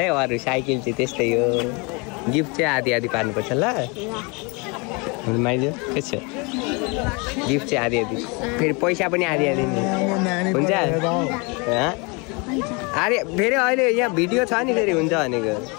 अरू साइकल चाहिँ त्यस्तै हो गिफ्ट चाहिँ आधी पार्नुपर्छ ल माइजो के छ गिफ्ट चाहिँ आधी फेरि पैसा पनि आधी हुन्छ अरे फेरि अहिले यहाँ भिडियो छ नि फेरि हुन्छ भनेको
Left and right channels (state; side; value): quieter; right; 29.9 dB